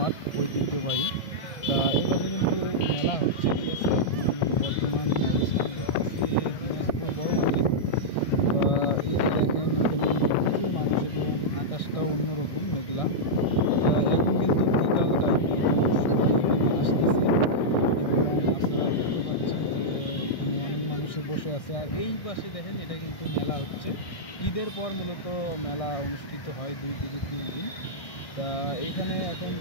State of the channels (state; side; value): late; right; 1.6 ms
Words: ঐতিহ্যবাহী। তা এই পাশে কিন্তু মেলা হচ্ছে, ঠিক আছে। এখন বর্তমান অবস্থান করতেছি দিনাজপুর বড় মাঠে। এই যে দেখেন, এখানে কিন্তু প্রচুর মানুষ এবং আকাশটাও অন্যরকম মেঘলা। এখন কিন্তু বিকাল টাইম, এখন সবাই এখানে আসতেছে এবং আপনারা দেখতে পাচ্ছেন যে এখানে অনেক মানুষই বসে আছে। আর এই পাশে দেখেন, এটা কিন্তু মেলা হচ্ছে। ঈদের পর মূলত মেলা অনুষ্ঠিত হয় 2 থেকে 3 দিন। তা এখানে এখন